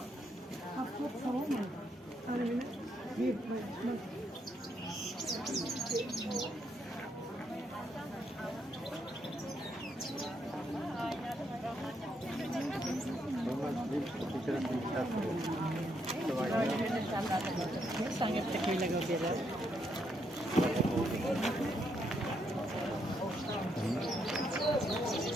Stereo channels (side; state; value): both; normal; correlation 0.76